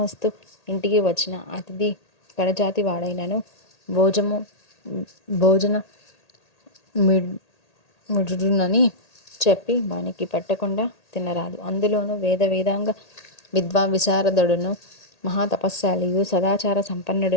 ఇంటికి వచ్చిన అతిథి కడజాతి వాడైనను భోజము భోజన మిడునని చెప్పి వానికి పెట్టకుండా తినరాదు. అందులోనూ వేదాంగ విశారదుడును మహాతపస్శాలియు సదాచార సంపన్నుడు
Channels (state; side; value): late; right; 1.8 ms